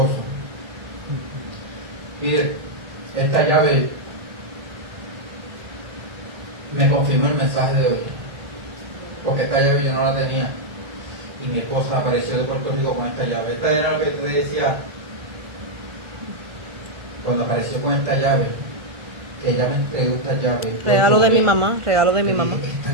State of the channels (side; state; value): left; late; 1.4 ms